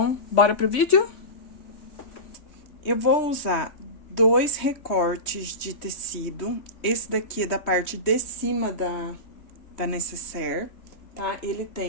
bora pro vídeo? Eu vou usar 2 recortes de tecido. Esse daqui é da parte de cima da necessaire, tá? Ele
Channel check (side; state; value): right; late; 3.2 ms